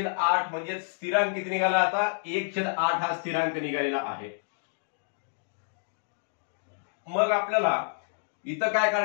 म्हणजे स्थिरांक किती निघाला? आता 1/8 हा स्थिरांक निघालेला आहे. मग आपल्याला इथं काय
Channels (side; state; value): right; silent; digital silence